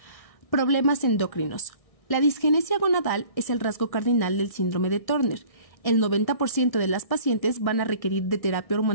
Problemas endocrinos. La disgenesia gonadal es el rasgo cardinal del síndrome de Turner. El 90% de las pacientes van a requerir de terapia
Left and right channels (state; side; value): late; right; 1.6 ms